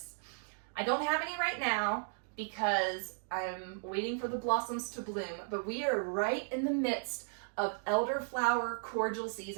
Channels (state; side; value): silent; left; 54 dB below the other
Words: I don't have any right now because I'm waiting for the blossoms to bloom, but we are right in the midst of elderflower cordial